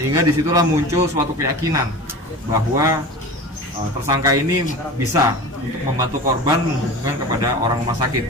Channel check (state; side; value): normal; both; correlation 0.34